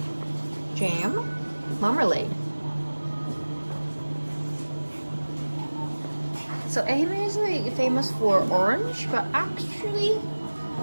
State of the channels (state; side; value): inverted; both; correlation -1.00